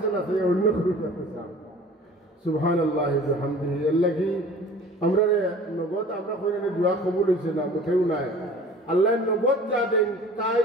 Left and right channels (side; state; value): both; normal; correlation 0.45